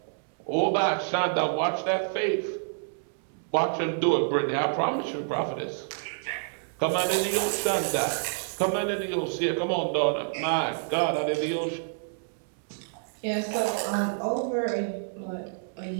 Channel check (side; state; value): left; silent; 59 dB below the other